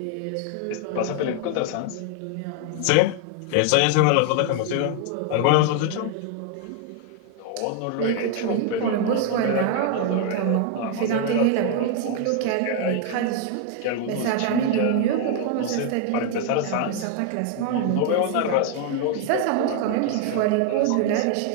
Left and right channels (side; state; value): both; different; correlation 0.01